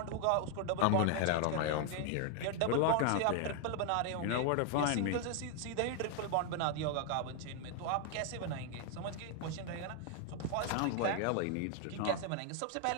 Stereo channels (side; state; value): both; different; correlation 0.00